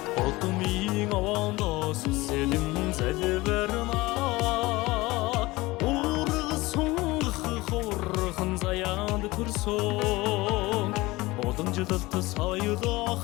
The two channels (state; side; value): quieter; right; 20.7 dB